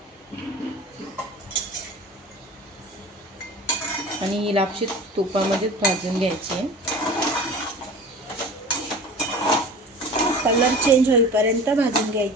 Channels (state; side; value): normal; both; correlation 0.38